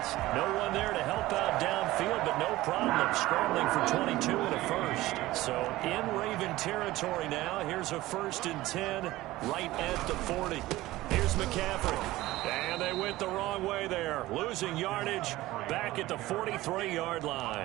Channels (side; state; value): left; quieter; 17.4 dB